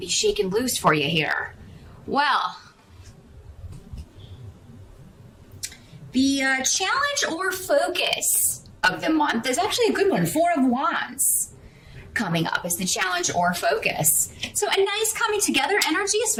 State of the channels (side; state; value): both; identical; correlation 1.00